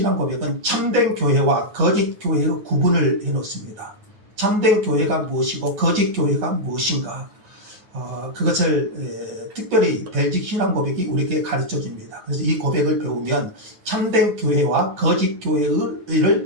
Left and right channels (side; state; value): left; late; 9.7 ms